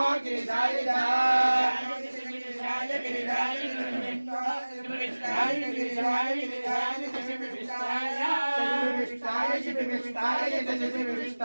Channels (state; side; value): inverted; both; correlation -1.00